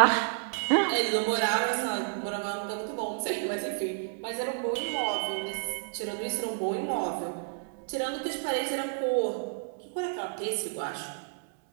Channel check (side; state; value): left; silent; 58 dB below the other